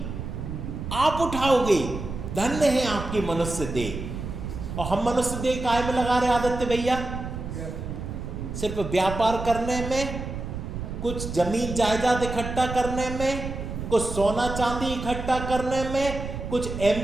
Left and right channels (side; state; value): right; noise; rumble, 7 dB below the sound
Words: आप उठाओगे, धन्य है आपकी मनुष्य देह। और हम मनुष्य देह काहे में लगा रहे आदित्य भैया? सिर्फ व्यापार करने में, कुछ जमीन जायदाद इकट्ठा करने में, कुछ सोना चांदी इकट्ठा करने में, कुछ